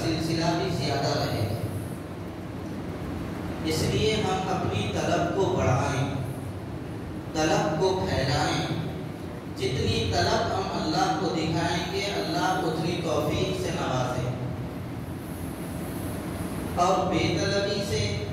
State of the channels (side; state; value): both; identical; correlation 1.00